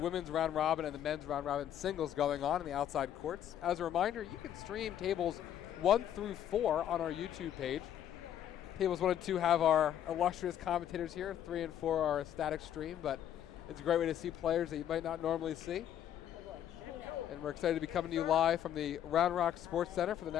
round robin and the men's round robin singles going on in the outside courts. As a reminder, you can stream tables 1 through 4 on our YouTube page. Tables 1 and 2 have our illustrious commentators here. 3 and 4 are a static stream, but it's a great way to see players that you might not normally see. And we're excited to be coming to you live from the Round Rock Sports Center for the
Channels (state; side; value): quieter; right; 10.5 dB